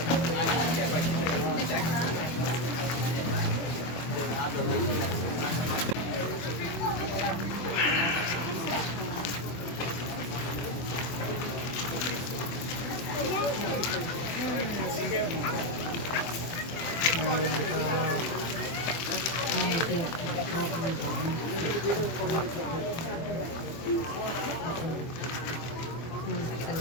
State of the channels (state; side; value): late; right; 24 ms